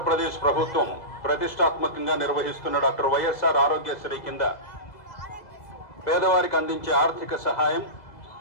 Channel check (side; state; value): right; late; 2.0 ms